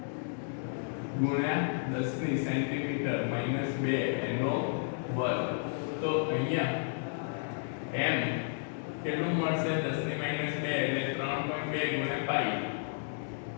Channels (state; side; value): silent; right; digital silence